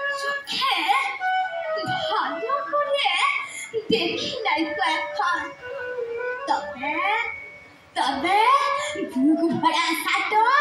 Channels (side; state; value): both; identical; correlation 1.00